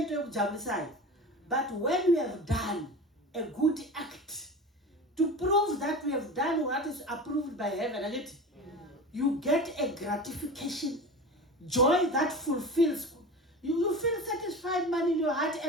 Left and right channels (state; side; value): normal; both; correlation 0.31